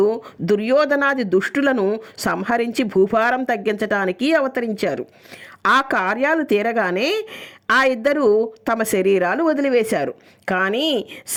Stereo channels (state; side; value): identical; both; correlation 1.00